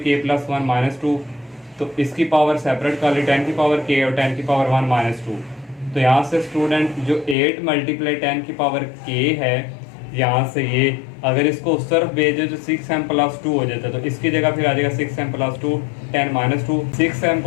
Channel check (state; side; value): drops out; right; at 7.4 s